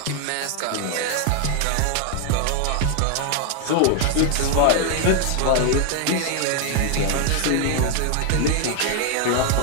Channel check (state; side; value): different; both; correlation 0.00